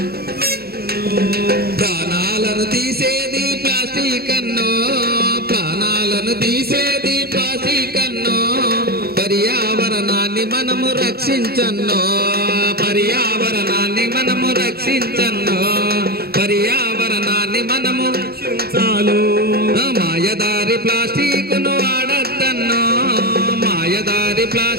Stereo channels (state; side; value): late; left; 0.45 ms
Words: ప్రాణాలను తీసేది ప్లాస్టిక్ అన్నో ప్రాణాలను తీసేది ప్లాస్టిక్ అన్నో పర్యావరణాన్ని మనము రక్షించన్నో పర్యావరణాన్ని మనము రక్షించన్నో పర్యావరణాన్ని మనము రక్షించాలి మాయదారి